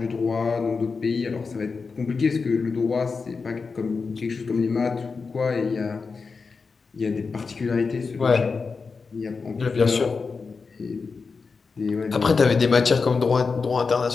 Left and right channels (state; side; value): quieter; right; 4.7 dB